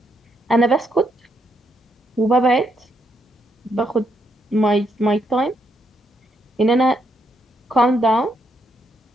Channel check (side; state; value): both; normal; correlation 0.77